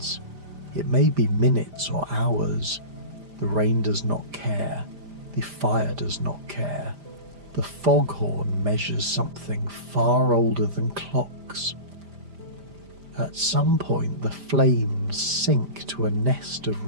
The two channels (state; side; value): late; left; 5.0 ms